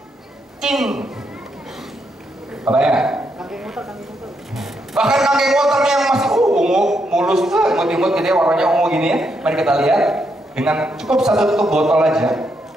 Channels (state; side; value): normal; both; correlation 0.79